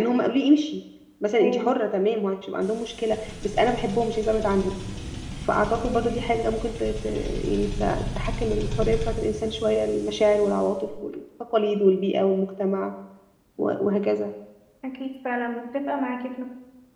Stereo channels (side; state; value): both; identical; correlation 1.00